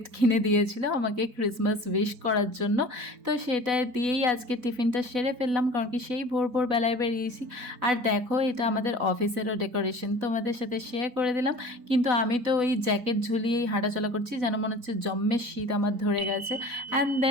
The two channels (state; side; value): late; left; 4.0 ms